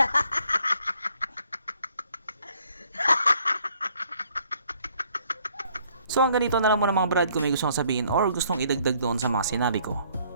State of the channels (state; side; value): inverted; both; correlation -0.64